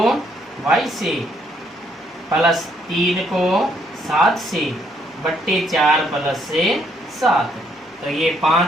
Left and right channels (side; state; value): both; normal; correlation 0.70